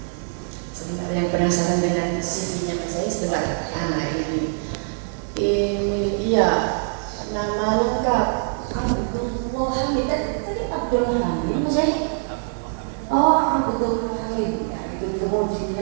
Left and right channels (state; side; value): silent; left; 63 dB below the other